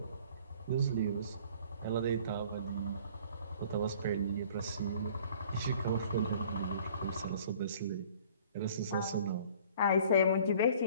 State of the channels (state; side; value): inverted; both; correlation -0.52